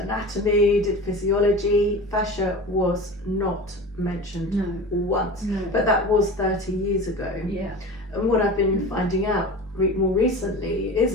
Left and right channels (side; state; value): both; normal; correlation 0.33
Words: did physiology. Fascia was not mentioned once, but that was 30 years ago. Yeah. And what I've been finding out more recently